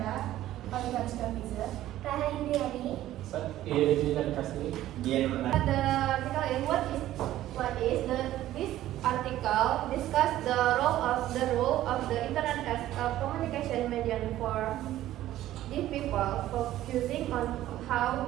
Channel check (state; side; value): quieter; left; 13.9 dB